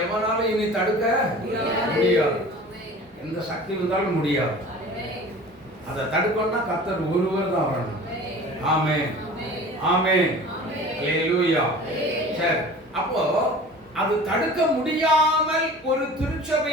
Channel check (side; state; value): both; normal; correlation 0.41